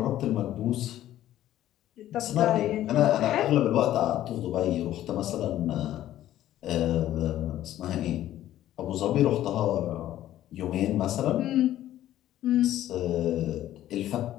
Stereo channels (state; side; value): quieter; right; 13.1 dB